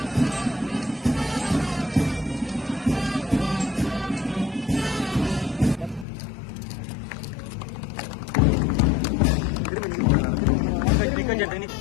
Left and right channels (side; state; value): right; drops out; at 6.1 s